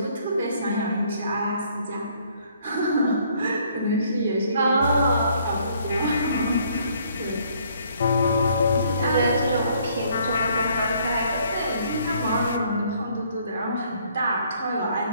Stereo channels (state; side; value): inverted; both; correlation -0.64